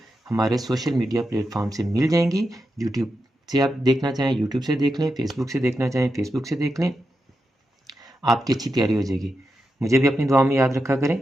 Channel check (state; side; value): normal; both; correlation 0.88